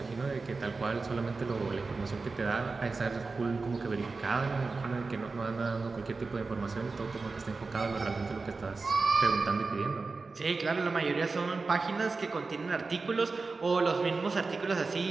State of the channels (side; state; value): left; quieter; 4.0 dB